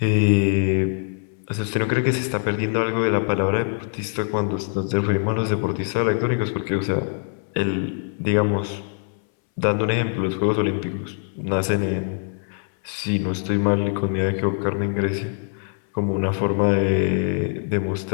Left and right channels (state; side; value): silent; right; 63 dB below the other